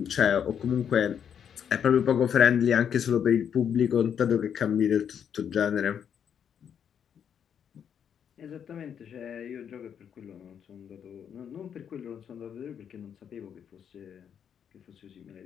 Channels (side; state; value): right; quieter; 8.2 dB